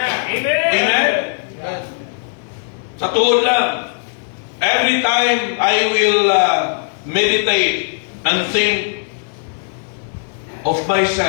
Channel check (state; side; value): silent; right; digital silence